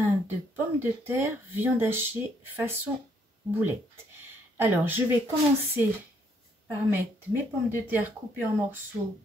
de pommes de terre, viande hachée façon boulette. Alors, je vais commencer par mettre mes pommes de terre coupées en morceaux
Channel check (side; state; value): both; normal; correlation 0.70